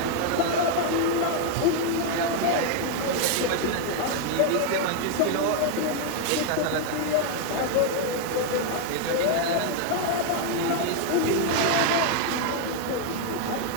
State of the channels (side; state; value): both; different; correlation 0.01